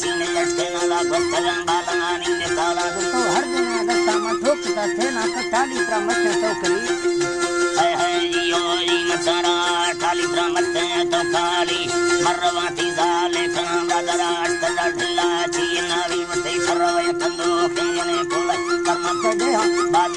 चीन लटके ना वाला बस्तगन बालानी ने काला तो हर दिन अगस्ता में ठोकता थे ना तो टाली पर मत टोकरी है यो ई मतारा टाली पर मत तो काली मरवाती जाले खान दादरा अष्टदा ढिल्ला चीना भी मते सरवे कंदो केने कोल कर्म दे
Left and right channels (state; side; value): identical; both; correlation 1.00